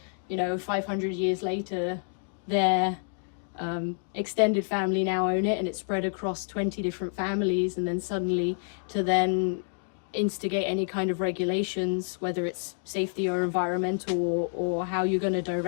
500 years later, their extended family now own it, and it's spread across 20 different families, and then suddenly to then instigate any kind of regulations, whether it's safety or environmental or how you're going to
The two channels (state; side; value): silent; right; 56 dB below the other